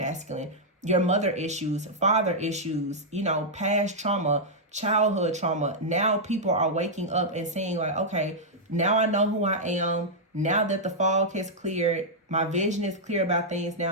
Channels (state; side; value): normal; both; correlation -0.06